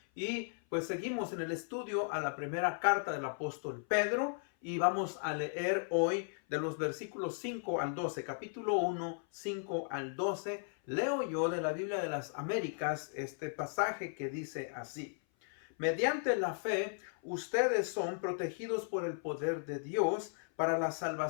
Y pues seguimos en el estudio a la primera carta del apóstol Pedro y vamos a leer hoy de los versículos 5 al 12, capítulo 1, 5 al 12. Leo yo de la Biblia de las Américas este pasaje que dice así: mediante la fe, ustedes son protegidos por el poder de Dios para la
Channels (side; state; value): right; silent; 54 dB below the other